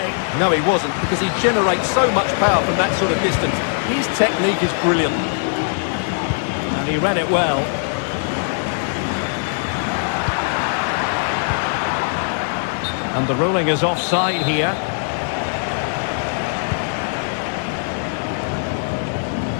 No, he wasn't, because he generates so much power from that sort of distance. His technique is brilliant. And he read it well. And the ruling is offside here.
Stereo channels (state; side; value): silent; right; 55 dB below the other